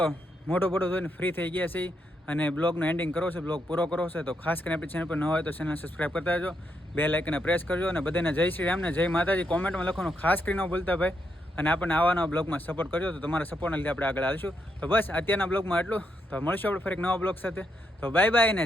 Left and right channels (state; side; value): normal; both; correlation 0.80